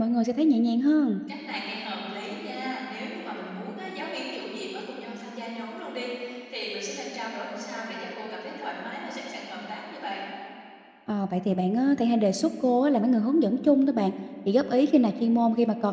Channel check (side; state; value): both; identical; correlation 1.00